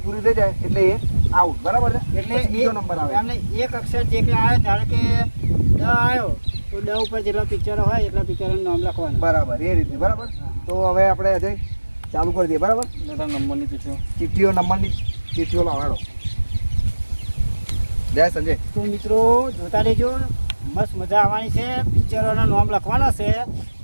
પૂરી થઈ જાય એટલે એ આઉટ, બરાબર છે? એટલે બીજો નંબર આવે. એમને એક અક્ષર જે કે આવે, ધારો કે ડ આવ્યો તો ડ ઉપર જેટલા પિક્ચરો હોય એટલા પિક્ચરોનું નામ લખવાનું, બરાબર, એ રીતે, બરાબર? તો હવે આપણે અજય ચાલુ કરી દઈએ, બરાબર? નંબરની ચિઠ્ઠીઓ નંબરની ચિઠ્ઠીઓ લાવાડો. જય સંજય. તો મિત્રો જોતા રહેજો, મસ્ત મજા આવવાની છે. પિક્ચરોના નામ લખવાના છે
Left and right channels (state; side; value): inverted; both; correlation -1.00